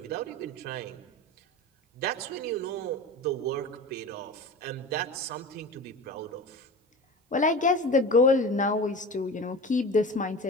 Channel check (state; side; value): normal; both; correlation 0.32